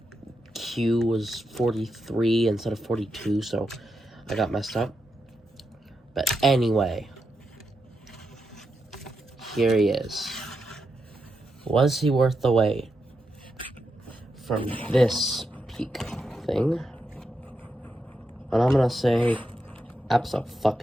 Q was 43 instead of 42, so I got messed up. But anyway, here he is. Was he worth the wait? From this peak thing. And I'm gonna say,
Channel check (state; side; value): normal; both; correlation 0.85